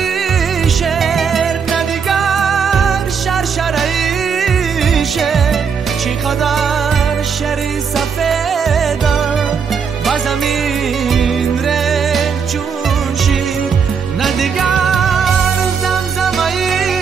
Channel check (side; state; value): left; quieter; 6.3 dB